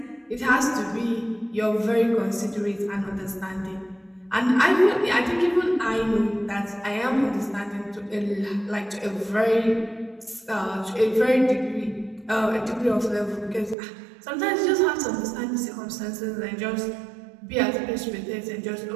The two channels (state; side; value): drops out; left; at 13.8 s